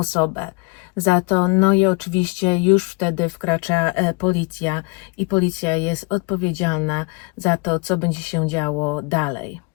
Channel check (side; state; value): right; quieter; 29.2 dB